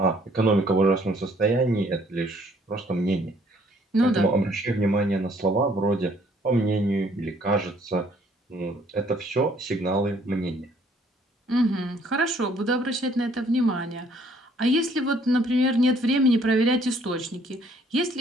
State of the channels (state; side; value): normal; both; correlation 0.62